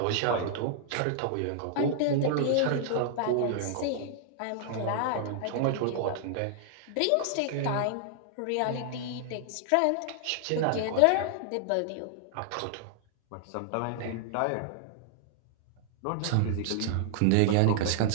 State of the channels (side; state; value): both; different; correlation -0.01